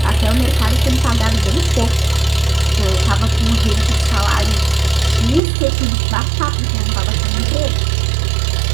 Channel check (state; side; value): drops out; left; at 5.4 s